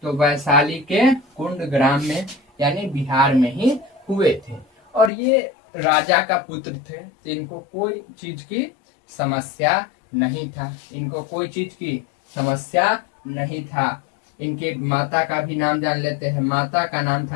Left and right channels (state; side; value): drops out; right; at 5.1 s